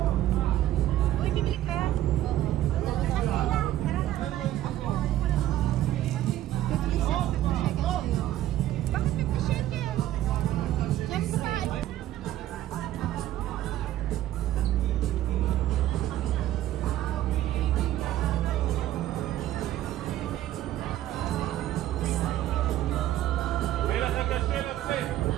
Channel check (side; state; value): left; quieter; 13.5 dB